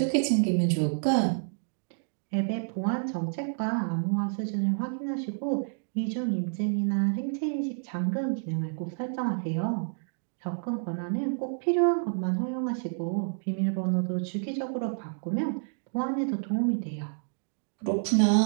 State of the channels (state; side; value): silent; left; digital silence